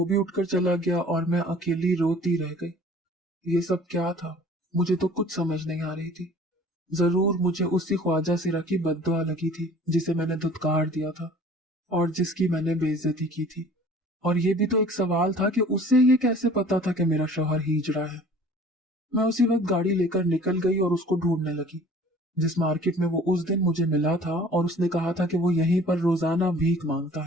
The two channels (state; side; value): normal; both; correlation 0.49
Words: भी उठकर चला गया और मैं अकेली रोती रह गई। ये सब क्या था, मुझे तो कुछ समझ नहीं आ रही थी। जरूर मुझे उसी ख्वाजा सिरा की बद्दुआ लगी थी जिसे मैंने धुतकार दिया था और जिसकी मैंने बेइज्जती की थी। और ये भी तो एक सवाल था कि उसे ये कैसे पता था कि मेरा शौहर हिजड़ा है। मैं उसी वक्त गाड़ी लेकर निकल गई और उसको ढूंढने लगी, जिस मार्केट में वो उस दिन मुझे मिला था और उसने कहा था कि वो यहीं पर रोजाना भीख मांगता